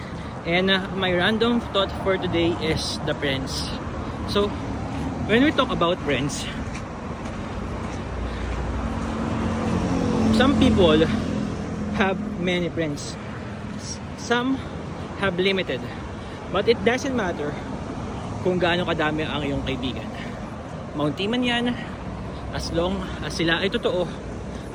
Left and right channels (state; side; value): identical; both; correlation 1.00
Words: and my random thought for today is the friends. So when we talk about friends, some people have many friends, some have limited, but it doesn't matter kung gaano kadami ang iyong kaibigan. Mountie man yan, as long as sila ay totoo